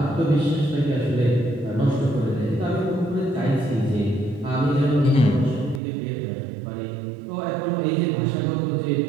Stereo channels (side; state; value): left; drops out; at 5.8 s